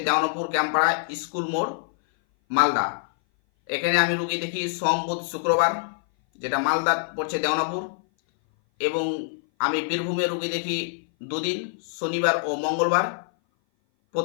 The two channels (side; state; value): right; silent; 58 dB below the other